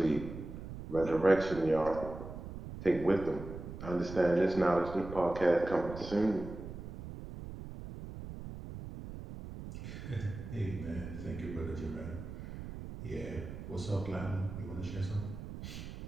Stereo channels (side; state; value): right; noise; rumble, 10 dB below the sound